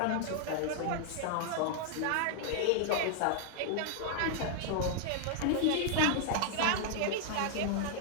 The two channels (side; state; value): both; different; correlation 0.00